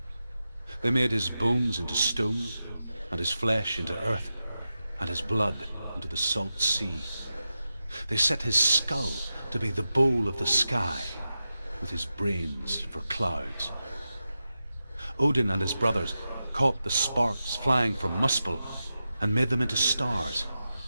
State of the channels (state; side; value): inverted; both; correlation -0.91